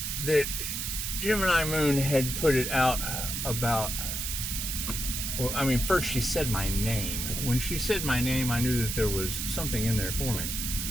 that Gemini Moon had put it out about, well, I mean, first she said my name. When she said my name, I knew that there was something in there for me.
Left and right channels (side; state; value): right; noise; hiss, 3 dB below the sound